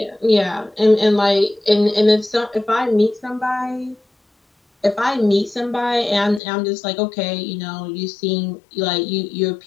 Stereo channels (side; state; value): right; drops out; at 6.4 s